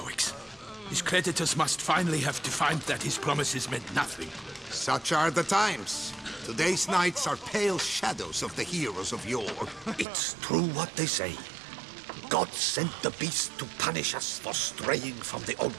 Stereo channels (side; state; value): left; drops out; at 10.1 s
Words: His creditors must finally have defined that his promises meant nothing. Such are the times. Today's knights are pale shadows of the heroes of yore. It's true what they say. God sent the beast to punish us for straying from the